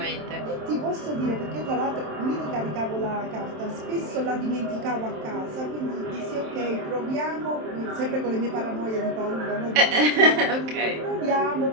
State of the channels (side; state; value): left; late; 27 ms